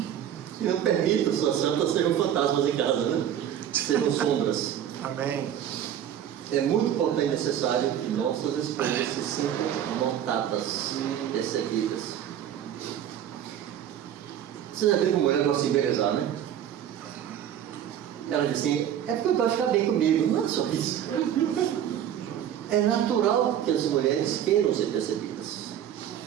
que não permitam suas santas serem fantasmas em casa, né? Serão sombras. Amém. É muito importante e necessário que nossas esposas se sintam notadas, percebidas. Você já viu como mulher gosta de embelezar, né? Ela diz assim, é porque eu gosto de ficar bem comigo. Não é só isso. É natural que as mulheres queiram ser percebidas.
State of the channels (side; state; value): left; quieter; 10.1 dB